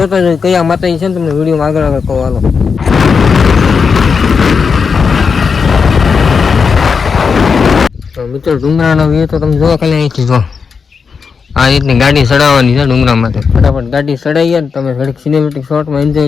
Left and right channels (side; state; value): right; quieter; 5.6 dB